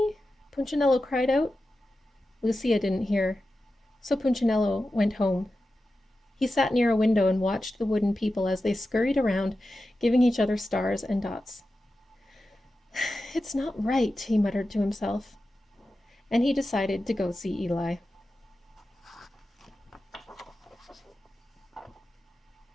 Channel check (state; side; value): normal; both; correlation 0.92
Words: Punchinello cried out. Lucia didn't hear, so Punchinello went home. He sat near a window and watched the wooden people as they scurried around, giving each other stars and dots. It's not right, he muttered to himself, and he decided to go see Eli.